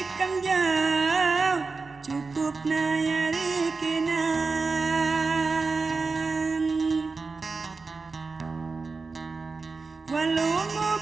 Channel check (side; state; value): left; quieter; 4.2 dB